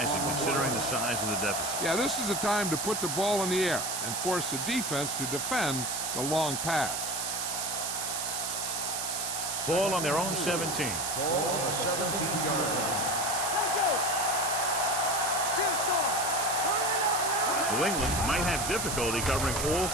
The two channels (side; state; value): right; noise; hiss, 2 dB below the sound